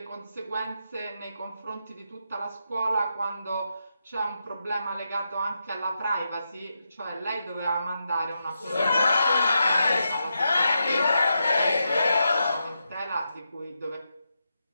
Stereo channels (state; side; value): inverted; both; correlation -0.85